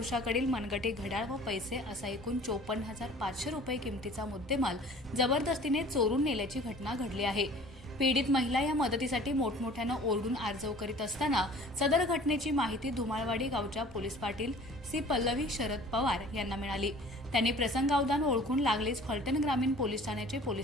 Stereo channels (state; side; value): normal; both; correlation 0.48